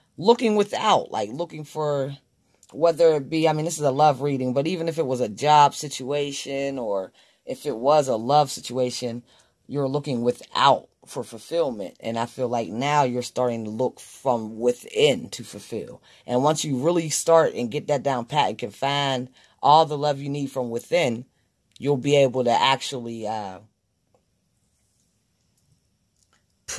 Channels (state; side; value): identical; both; correlation 1.00